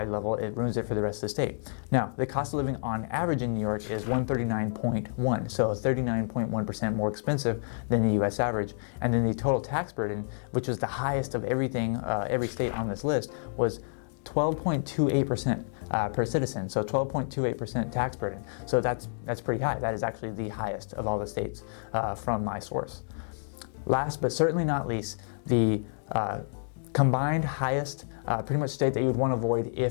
level, it ruins it for the rest of the state. Now, the cost of living on average in New York is 139.1, so 39.1% more expensive than the US average. And then the total tax burden, which was the highest of everything, every state on this list, was 12.28% per citizen, so 12.28% tax burden. So that's pretty high. That is actually the highest of all the states from my source. Last but certainly not least, the combined highest pretty much state that you would want to avoid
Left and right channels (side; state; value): right; silent; digital silence